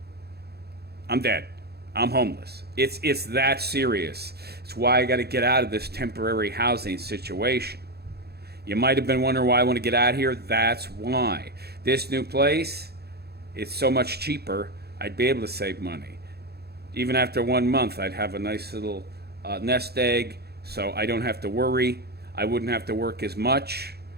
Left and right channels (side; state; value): left; late; 0.47 ms